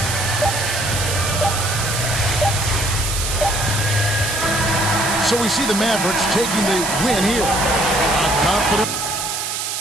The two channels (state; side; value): noise; right; hiss, 3 dB below the sound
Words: So we see the Mavericks taking the win here. A confident.